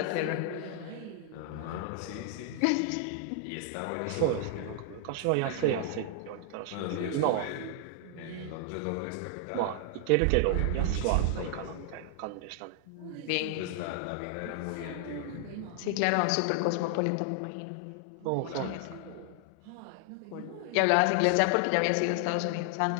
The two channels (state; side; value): different; both; correlation 0.00